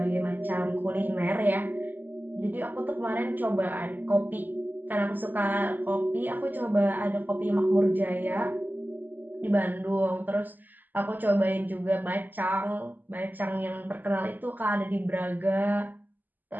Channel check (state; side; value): late; left; 0.087 ms